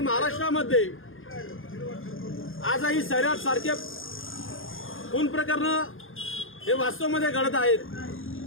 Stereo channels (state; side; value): late; right; 0.59 ms